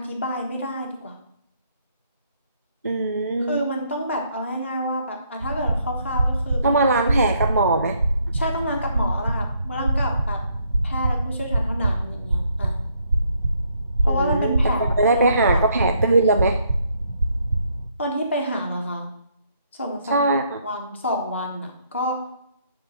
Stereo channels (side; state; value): both; inverted; correlation -0.71